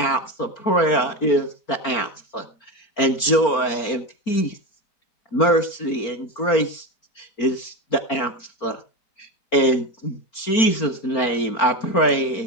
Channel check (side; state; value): right; late; 4.4 ms